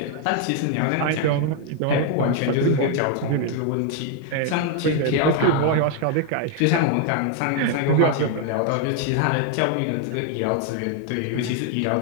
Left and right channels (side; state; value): both; different; correlation 0.01